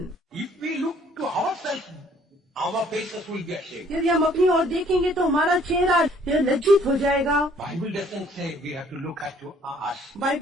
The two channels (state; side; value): normal; both; correlation 0.60